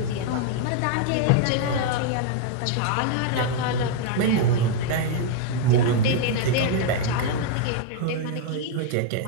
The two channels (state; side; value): different; both; correlation 0.00